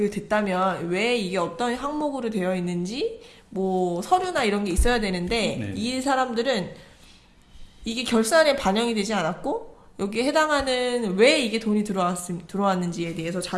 됐다면 왜 이게 어떤 항목으로 되어 있는지 뭐 서류나 이런 게 있어야 되는데 네. 이 사람들은 이게 결산에 반영이 되지 않았고 여기에 해당하는 왜 이게 돈이 들어왔는지에 대해서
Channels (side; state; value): both; identical; correlation 1.00